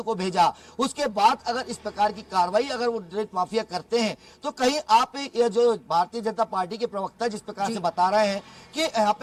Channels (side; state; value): both; identical; correlation 1.00